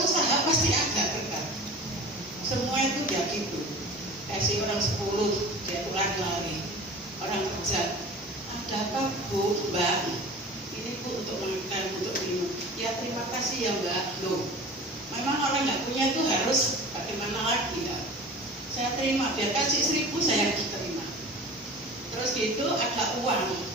pasti agak dekat. Semua itu ya gitu. Kasih orang 10, dia pulang lari. hajat. Ada apa Bu, Mbak? Ini Bu untuk makan, untuk minum. Ya terima kasih ya Mbak. Loh, memang orang nggak punya itu harus bagaimana lagi ya? Saya terima, dia kasih 1.000 saya terima. Terus gitu ada uang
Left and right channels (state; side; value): normal; both; correlation 0.38